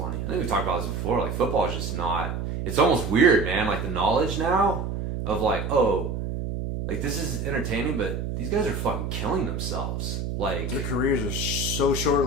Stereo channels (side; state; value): right; noise; hum, 3 dB below the sound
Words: I think we've talked about this before. Like football is just not. It's almost weird, man. Like the knowledge now of like, oh, like this is entertaining, but these guys are fucking killing themselves. Like their careers are so